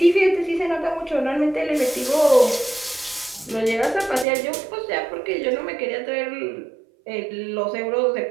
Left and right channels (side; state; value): left; drops out; at 4.2 s